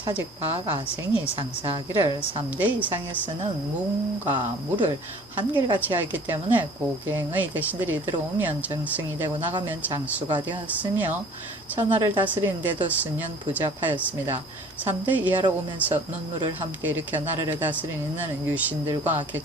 박아생이 상사하기를 3대 이상에 쓰는 문과 무를 한결같이 하였기 때문에 고갱의 대신들이 들어오면 정승이 되고 나가면 장수가 되었으며 천하를 다스리는 데도 수년 부잡하였습니다. 3대 이하로 오면서 논무를 함께 일으켜 나라를 다스리는 유신들과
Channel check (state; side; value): normal; both; correlation 0.50